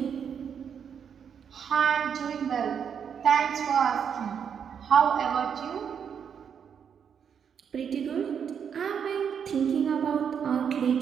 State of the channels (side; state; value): left; quieter; 7.5 dB